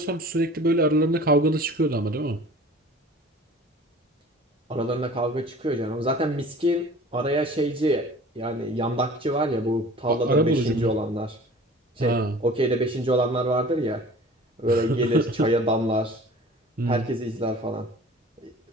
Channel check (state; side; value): normal; both; correlation 0.44